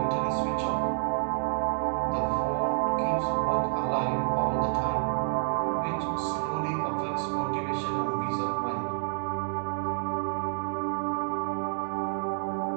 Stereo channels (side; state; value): left; silent; digital silence